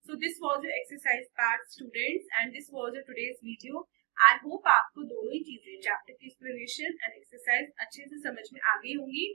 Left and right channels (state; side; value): quieter; left; 33.0 dB